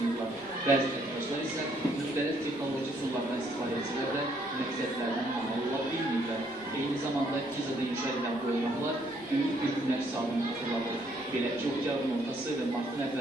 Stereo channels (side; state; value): right; noise; rumble, 27 dB below the sound